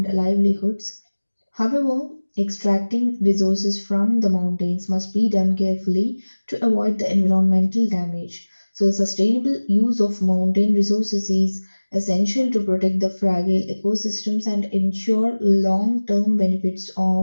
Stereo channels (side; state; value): both; inverted; correlation -1.00